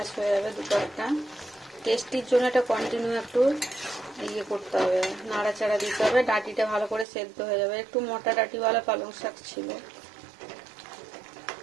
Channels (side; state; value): left; drops out; at 7.1 s